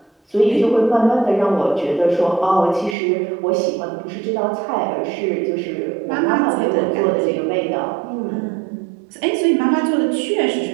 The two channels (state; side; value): drops out; left; at 3.0 s